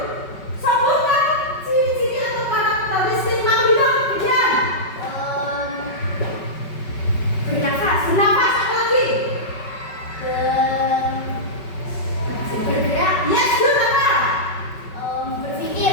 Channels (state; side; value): late; right; 5.3 ms